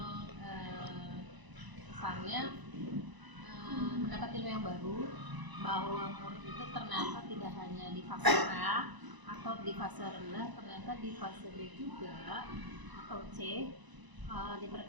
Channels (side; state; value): left; late; 1.0 ms